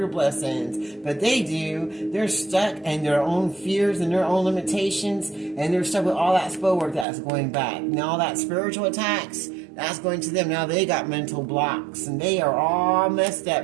blessings. But they do. They're stuck in their own fears and their own limitations. And they're stuck with all that spell work that's going back. Now all that spiritual attacks, that's going to them. Now they got mental blocks and they are all messed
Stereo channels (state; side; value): drops out; left; at 7.1 s